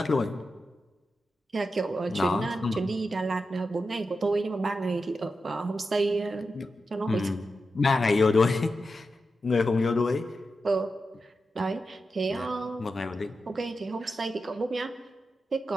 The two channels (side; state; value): both; normal; correlation 0.89